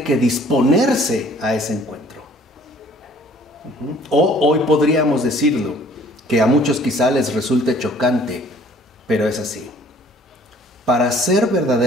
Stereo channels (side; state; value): both; normal; correlation 0.56